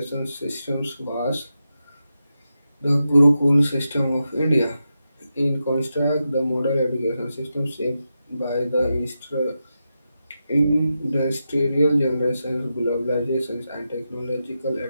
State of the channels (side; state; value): both; inverted; correlation -0.89